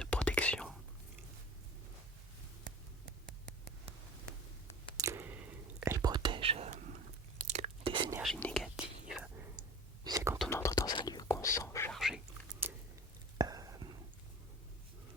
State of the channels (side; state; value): both; normal; correlation 0.39